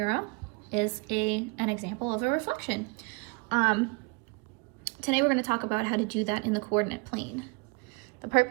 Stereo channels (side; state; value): left; quieter; 28.6 dB